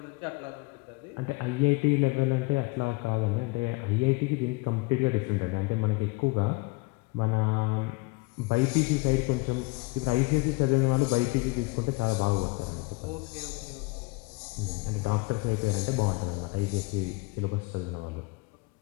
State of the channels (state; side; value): quieter; right; 25.7 dB